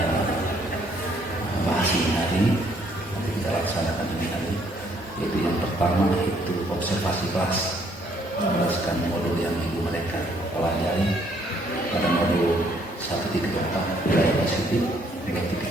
bahas ini hari ini, nanti kita laksanakan ini hari, yaitu yang pertama yaitu observasi kelas, menjelaskan modul yang ibu mereka pelajari pada modul 1.4 nilai positif,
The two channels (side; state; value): both; normal; correlation 0.67